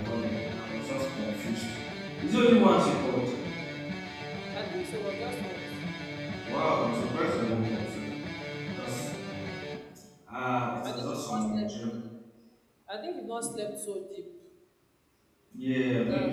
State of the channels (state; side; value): identical; both; correlation 1.00